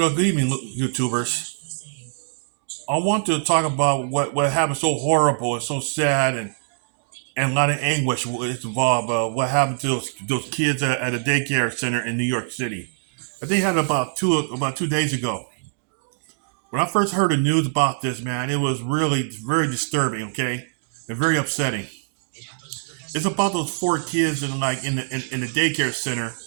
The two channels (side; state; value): left; silent; digital silence